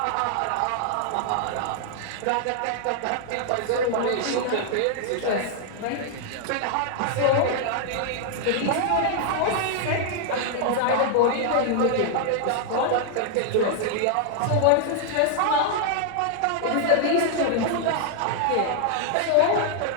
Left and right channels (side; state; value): both; different; correlation 0.00